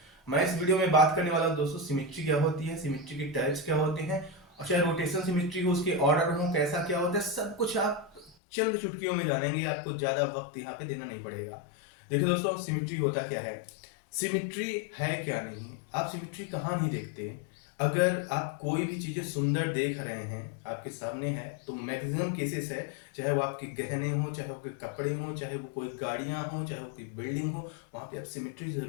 मैं इस वीडियो में बात करने वाला हूँ दोस्तों, सिमेट्री क्या होती है, सिमेट्री के टाइप्स क्या होते हैं, और चाहे रोटेशन सिमेट्री हो, उसके ऑर्डर हो, कैसा क्या होता है, सब कुछ आप चंद चुटकियों में जानेंगे। आपको ज्यादा वक्त यहाँ पे देना नहीं पड़ेगा। देखिए दोस्तों, सिमेट्री होता क्या है, सिमेट्री है क्या नहीं। आप सिमेट्री कहाँ नहीं देखते। अगर आप कोई भी चीजें सुंदर देख रहे हैं, आपके सामने है, तो मैक्सिमम केसेस है, चाहे वो आपके गहने हो, चाहे वो कोई कपड़े हो, चाहे वो कोई गाड़ियां हो, चाहे वो कोई बिल्डिंग हो, वहां पे आप सिमेट्री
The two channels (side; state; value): right; drops out; at 8.3 s